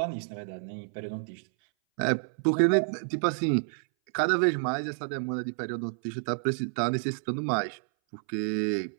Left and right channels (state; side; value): silent; left; 58 dB below the other